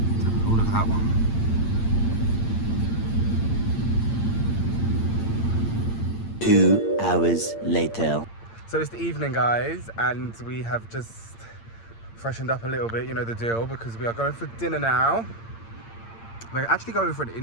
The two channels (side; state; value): right; late; 8.8 ms